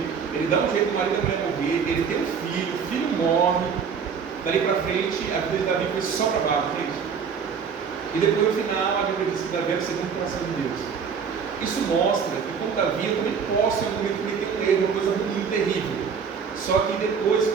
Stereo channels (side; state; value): left; quieter; 6.4 dB